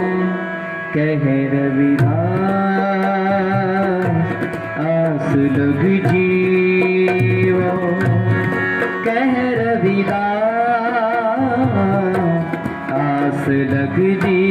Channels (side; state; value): both; identical; correlation 1.00